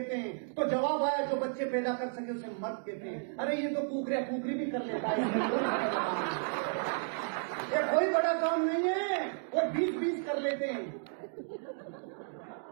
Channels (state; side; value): silent; left; digital silence